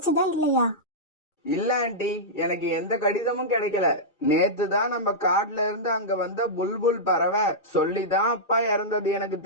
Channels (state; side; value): late; right; 2.4 ms